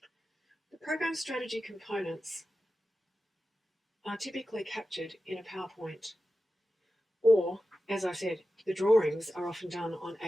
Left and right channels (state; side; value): normal; both; correlation 0.93